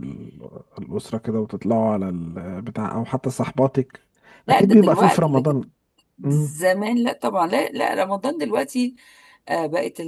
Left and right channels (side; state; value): both; identical; correlation 1.00